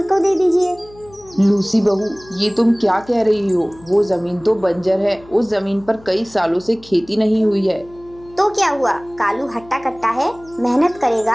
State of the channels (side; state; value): left; noise; hum, 23 dB below the sound